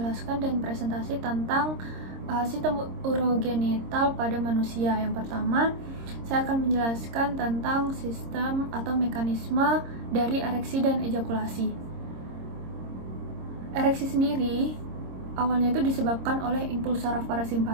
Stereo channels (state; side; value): late; left; 26 ms